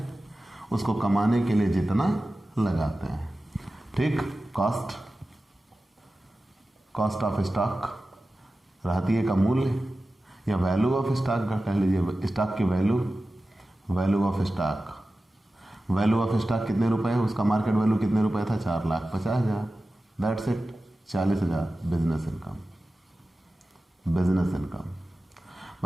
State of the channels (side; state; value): both; normal; correlation 0.95